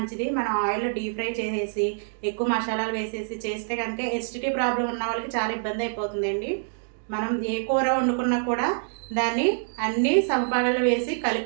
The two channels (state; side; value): silent; left; digital silence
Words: మనం ఆయిల్లో డీప్ ఫ్రై చేసేసి ఎక్కువ మసాలాలు వేసేసి చేస్తే కనుక ఎసిడిటీ ప్రాబ్లం ఉన్న వాళ్ళకి చాలా ఇబ్బంది అయిపోతుందండి. మనం ఏ కూర వండుకున్నా కూడా దాన్ని అన్ని సమపాలలో వేసి